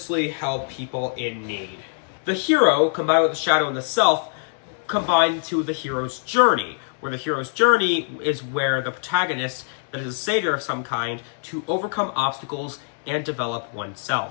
help people in need. The hero, combined with the shadow and the self, combine to the hero's journey, where the hero's journey is where the protagonist, that is a savior of some kind, to overcome obstacles and develop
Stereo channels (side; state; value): right; silent; 63 dB below the other